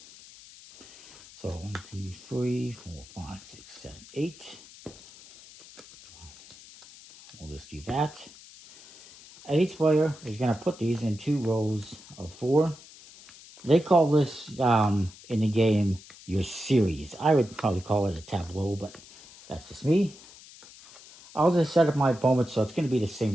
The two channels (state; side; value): noise; left; hiss, 20 dB below the sound